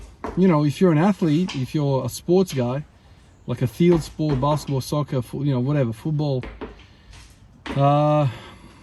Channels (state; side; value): identical; both; correlation 1.00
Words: if you're an athlete, if you're a sports guy, like a field sport, basketball, soccer, whatever, football, I